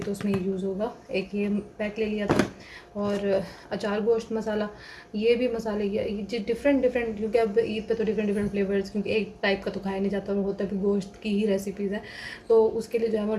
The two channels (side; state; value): both; identical; correlation 1.00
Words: तो उसमें ये यूज़ होगा। एक ये पैक ले लिया था। और अचार गोश्त मसाला, ये भी मसाले ये डिफरेंट डिफरेंट, क्योंकि अब ईद पे तो डिफरेंट डिफरेंट फ्लेवर्स, क्योंकि एक टाइप का तो खाया नहीं जाता, वो होता भी गोश्त की ही रेसिपीज़ है। तो उसके लिए जो है वो